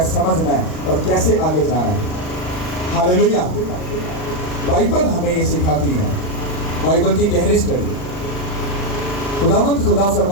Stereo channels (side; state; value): right; late; 39 ms